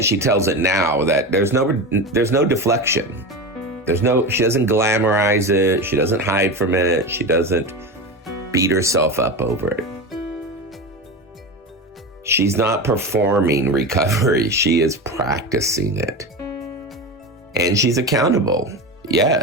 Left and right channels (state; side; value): normal; both; correlation 0.23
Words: she tells it now, that there's no deflection. She doesn't glamorize it. She doesn't hide from it. She doesn't beat herself up over it. She's not performing recovery. She is practicing it. And she's accountable,